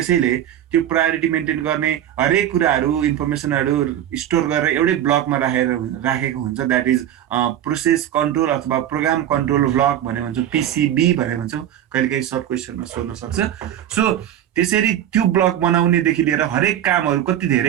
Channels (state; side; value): quieter; left; 11.2 dB